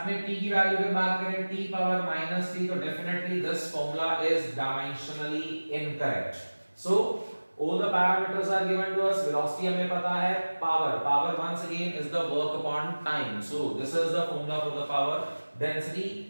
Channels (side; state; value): both; inverted; correlation -1.00